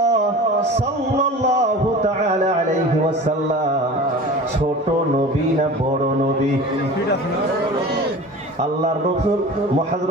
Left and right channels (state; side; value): normal; both; correlation 0.37